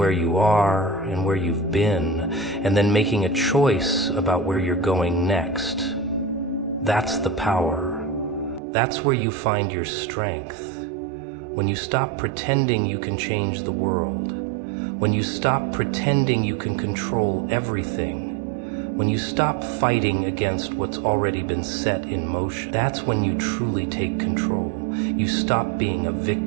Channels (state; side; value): drops out; left; at 8.6 s